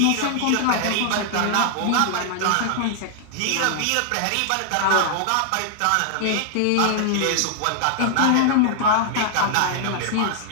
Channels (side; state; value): both; different; correlation 0.00